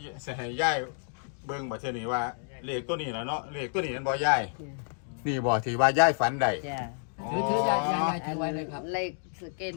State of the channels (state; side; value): silent; right; 58 dB below the other